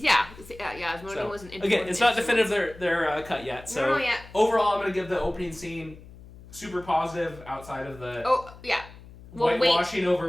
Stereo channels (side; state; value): left; noise; hum, 19 dB below the sound